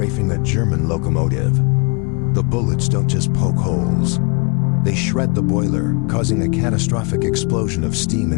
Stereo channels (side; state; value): right; quieter; 33.3 dB